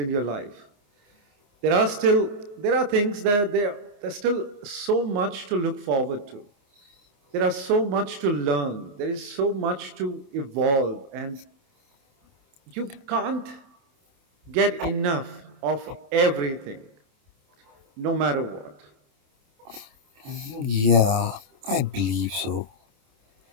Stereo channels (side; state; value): left; late; 28 ms